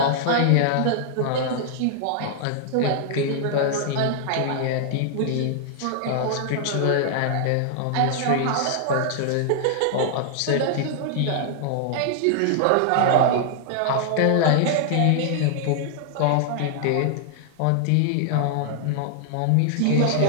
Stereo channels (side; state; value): both; different; correlation -0.01